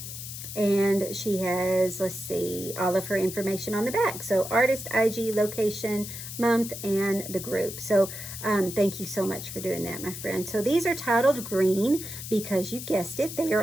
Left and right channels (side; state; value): left; noise; hiss, 9 dB below the sound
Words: And she has, let's see, all of her information on the back. So artist, IG, location, month, and the group. So thank you so much for doing that, my friend. So these are titled green because you guessed it, they